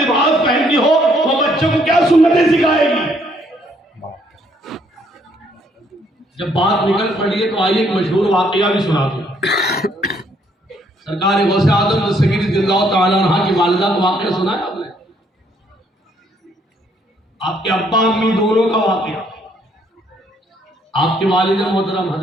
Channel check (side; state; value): both; normal; correlation 0.68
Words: पहनती हो वो बच्चों को क्या सुन्नतें सिखाएगी? जब बात निकल पड़ी है तो आइए एक मशहूर वाकया भी सुना दूं। सरकार गौसे आजम सगीर रज़ियल्लाहु तआला अन्हा की वालिदा का वाकया सुना है आपने? आपके अब्बा अम्मी दोनों का वाकया। आपके वालिद मोहतरम